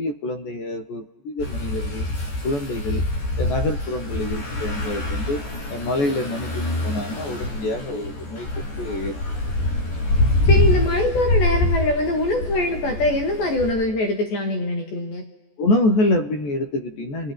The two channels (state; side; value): late; right; 14 ms